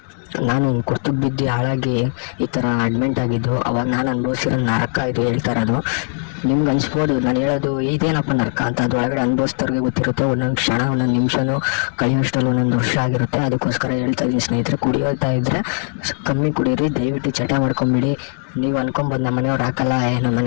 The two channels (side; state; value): right; silent; 58 dB below the other